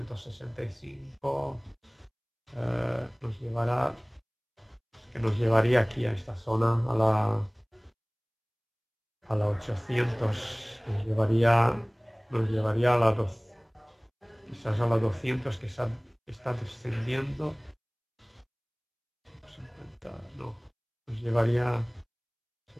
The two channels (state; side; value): identical; both; correlation 1.00